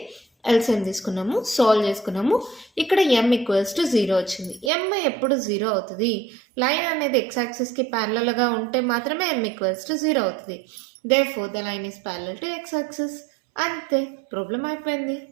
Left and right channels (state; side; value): drops out; left; at 4.7 s